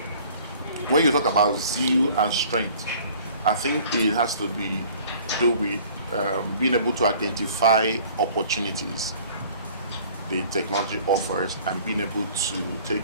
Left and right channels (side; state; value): both; inverted; correlation -0.52